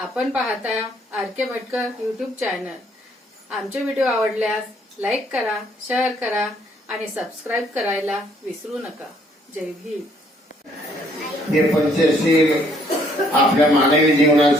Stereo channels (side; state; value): both; normal; correlation 0.65